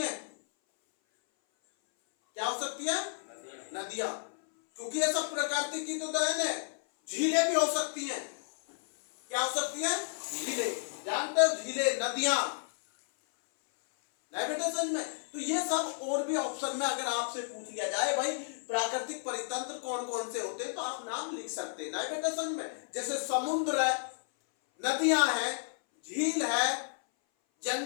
क्या हो सकती है? नदियां, क्योंकि ये सब प्रकृति की तो देन है। झीलें भी हो सकती हैं। क्या हो सकती है? झीलें, जानते हो झीलें, नदियां, नहीं बेटा समझ में? तो ये सब और भी ऑप्शन में अगर आपसे पूछ लिया जाए भाई प्राकृतिक परितंत्र कौन कौन से होते हैं तो आप नाम लिख सकते हैं, नहीं बेटा समझ में? जैसे समुद्र है, नदियां है, झील है,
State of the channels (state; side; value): silent; right; 56 dB below the other